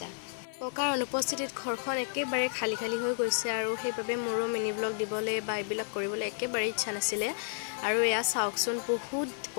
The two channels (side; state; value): right; silent; digital silence